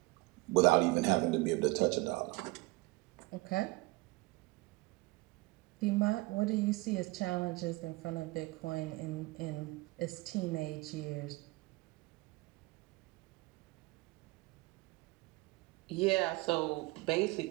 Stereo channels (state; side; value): quieter; left; 22.1 dB